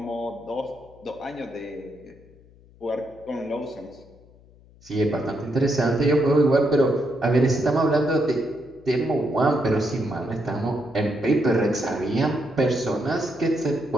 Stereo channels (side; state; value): left; noise; hum, 26 dB below the sound